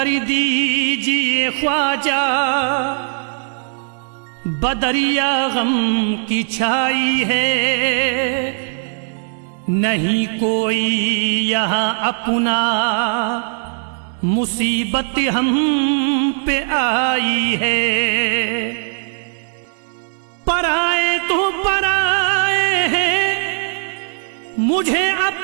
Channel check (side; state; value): left; silent; 67 dB below the other